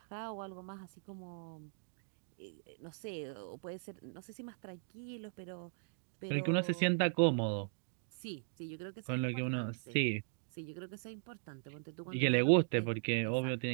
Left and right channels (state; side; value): silent; left; digital silence